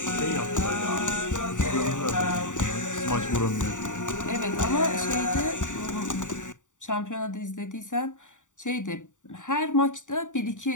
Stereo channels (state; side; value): late; right; 0.86 ms